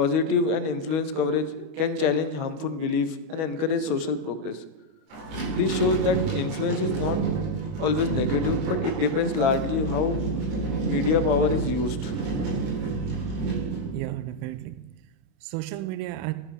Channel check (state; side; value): late; left; 31 ms